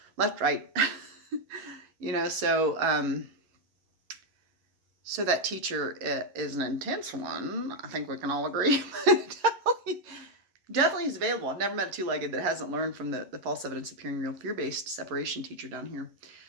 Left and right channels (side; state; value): left; late; 11 ms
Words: left, right. So that teacher is an intense one. I think we can all agree. Definitely is available. I've never met a two-legged that hasn't learned from the false evidence appearing real fear-based separation teacher down here.